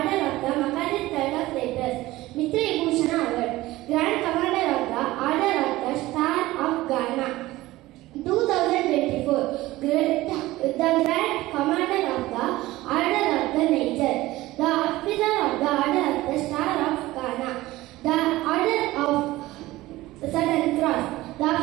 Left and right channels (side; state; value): left; quieter; 17.8 dB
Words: of the Makadis Third of Letters, Mitra Bhushan Award, Grand Commander of the Order of the Star of Ghana 2024, the Grand Commander of the Order of the Nature, the Officer of the Order of the Star of Ghana, the Order of Southern Cross, the